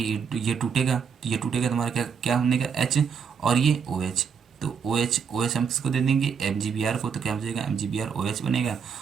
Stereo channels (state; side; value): quieter; left; 6.6 dB